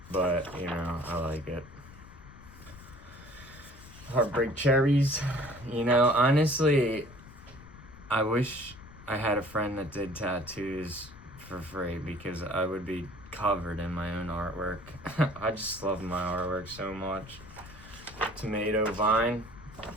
but I like it. Heartbreak cherries. Honestly, I wish I had a friend that did tattoos for free, because I would be covered in my own artwork. I just love my artwork so much. Tomato vine,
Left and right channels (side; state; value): left; noise; rumble, 18 dB below the sound